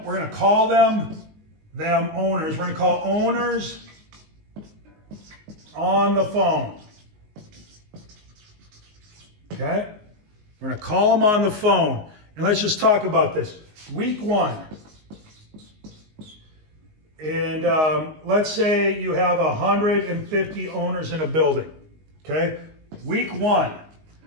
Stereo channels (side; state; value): left; late; 19 ms